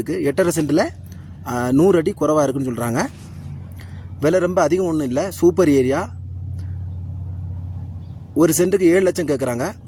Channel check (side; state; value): both; identical; correlation 1.00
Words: 8.5 சென்ட்டில் 100 அடி குறைவாக இருக்குன்னு சொல்கிறாங்க. விலை ரொம்ப அதிகம் ஒன்றும் இல்லை. Super area. ஒரு சென்ட்டுக்கு 7 லட்சம் கேட்குறாங்க.